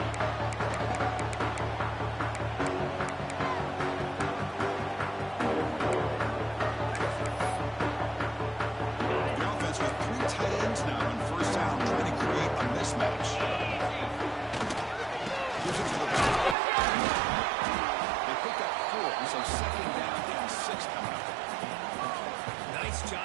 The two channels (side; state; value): left; drops out; at 16.6 s